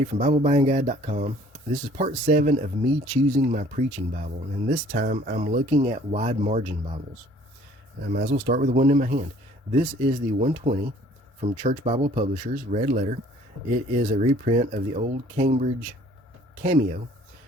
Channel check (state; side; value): normal; both; correlation 0.56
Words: from BibleBuyingGuide.com. This is part 7 of me choosing my preaching Bible, and this time I'm looking at wide margin Bibles. I might as well start with the one in my hand. This is the 120 from Church Bible Publishers, red letter. It is a reprint of the old Cambridge Cameo,